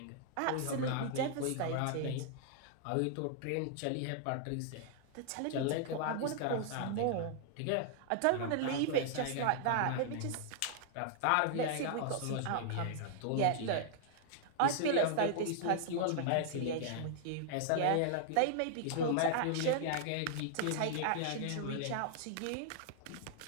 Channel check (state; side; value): different; both; correlation -0.01